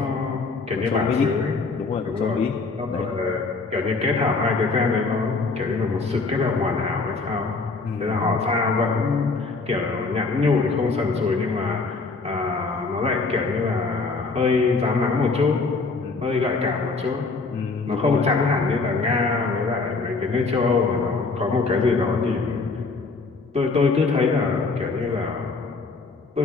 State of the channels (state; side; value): quieter; right; 4.0 dB